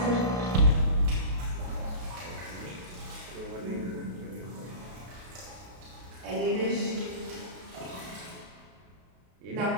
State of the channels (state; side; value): late; left; 33 ms